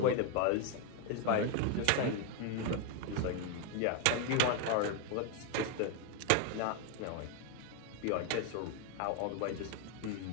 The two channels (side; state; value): both; different; correlation 0.01